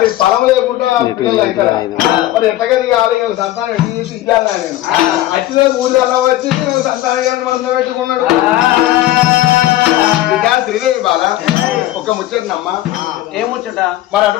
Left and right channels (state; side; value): quieter; right; 15.0 dB